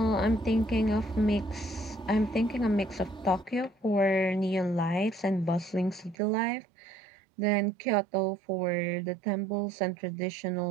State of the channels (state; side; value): drops out; left; at 6.2 s